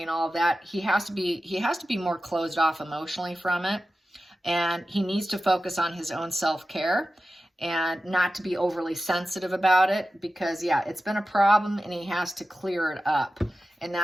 and all of that, he has to be more closed off emotionally from it. And he needs to focus on his own self-care and not to be overly sensitive about it because, yeah, it's been a problem and he has to clear it up. And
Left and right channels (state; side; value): normal; both; correlation 0.93